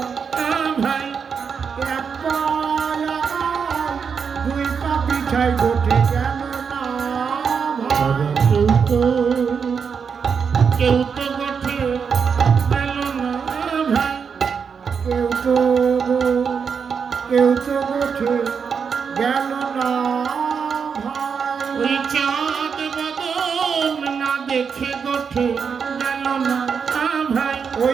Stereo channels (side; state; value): left; quieter; 6.3 dB